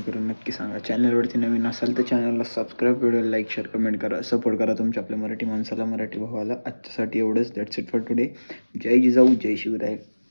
करून नक्की सांगा. चॅनलवरती नवीन असाल तर चॅनलला subscribe, video like share comment करा, सपोर्ट करा तुमच्या आपल्या मराठी माणसाला मराठी भावाला. आजच्यासाठी एवढंच. That's it for today. जय जिजाऊ जय शिवराय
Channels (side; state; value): both; inverted; correlation -1.00